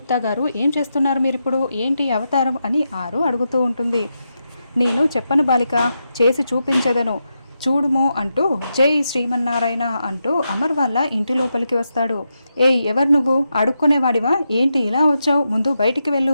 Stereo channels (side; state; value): both; inverted; correlation -0.86